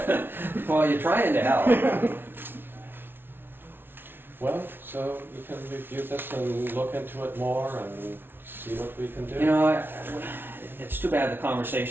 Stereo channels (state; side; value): late; left; 0.11 ms